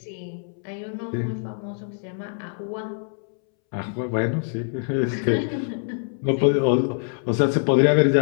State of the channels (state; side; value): silent; right; 62 dB below the other